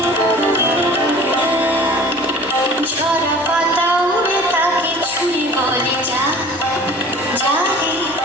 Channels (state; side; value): noise; right; rumble, 28 dB below the sound